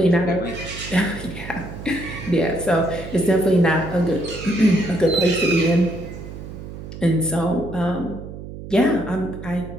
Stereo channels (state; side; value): noise; right; hum, 11 dB below the sound